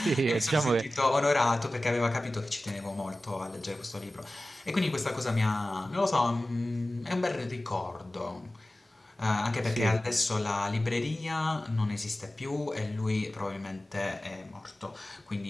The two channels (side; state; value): both; normal; correlation 0.96